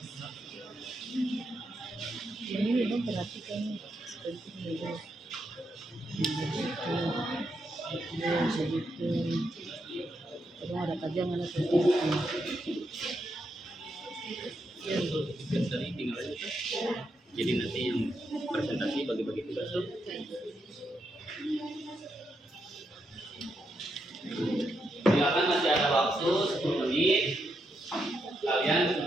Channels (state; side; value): normal; both; correlation 0.82